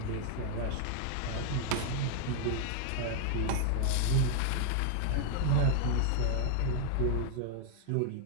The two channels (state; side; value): different; both; correlation -0.01